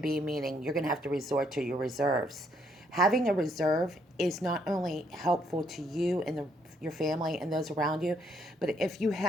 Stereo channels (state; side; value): normal; both; correlation 0.70